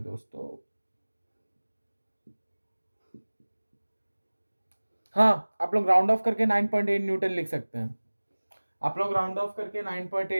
हाँ, आप लोग राउंड ऑफ करके 9.8 न्यूटन लिख सकते हैं। आप लोग राउंड ऑफ करके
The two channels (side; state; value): both; inverted; correlation -1.00